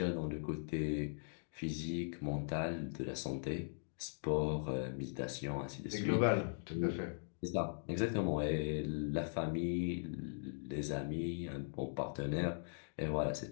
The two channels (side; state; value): right; silent; digital silence